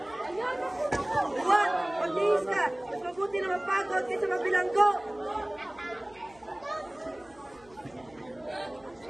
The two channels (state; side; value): noise; left; hum, 27 dB below the sound